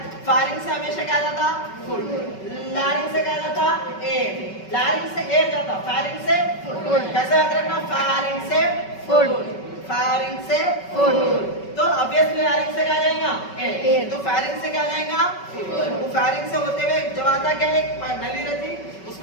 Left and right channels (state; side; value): late; right; 5.3 ms